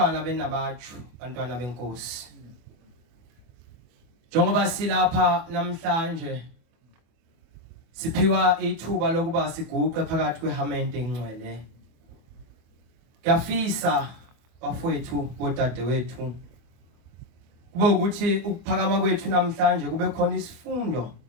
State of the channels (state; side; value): late; left; 24 ms